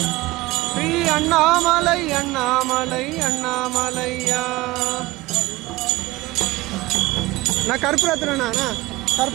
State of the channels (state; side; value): quieter; left; 19.9 dB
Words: ஸ்ரீ அண்ணாமலை அண்ணாமலை அண்ணாமலையா நான் கற்பூரத்துறேண்ணா